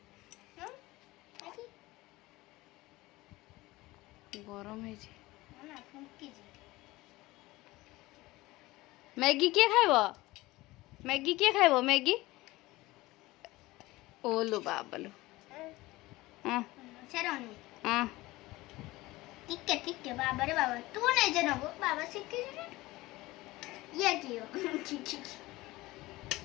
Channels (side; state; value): right; quieter; 19.5 dB